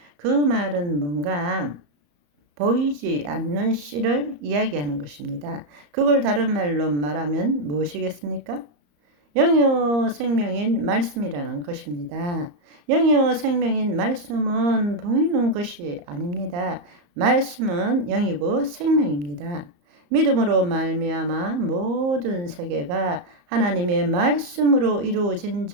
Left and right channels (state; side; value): late; left; 34 ms